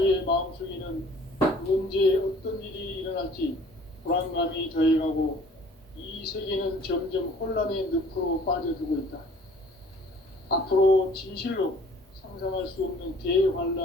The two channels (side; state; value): both; normal; correlation 0.53